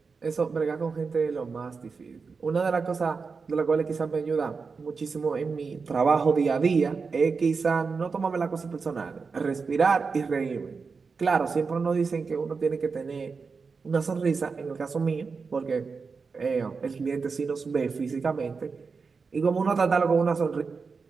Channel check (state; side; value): quieter; left; 4.9 dB